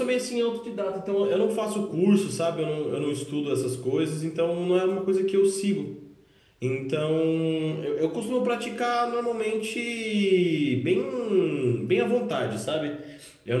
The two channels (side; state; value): both; identical; correlation 1.00